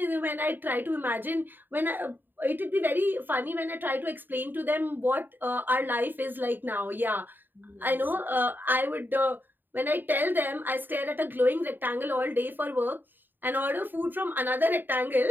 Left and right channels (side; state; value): left; late; 0.092 ms